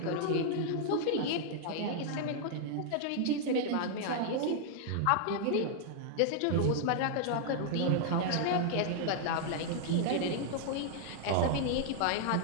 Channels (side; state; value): both; different; correlation 0.00